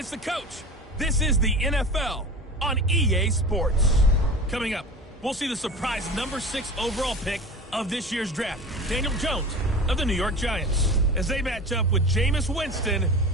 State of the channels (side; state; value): both; normal; correlation 0.34